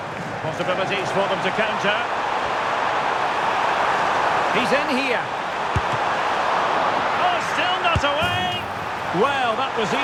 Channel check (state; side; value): identical; both; correlation 1.00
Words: Possibilities for them to counter. He's in here. Oh, still not away. Well, that was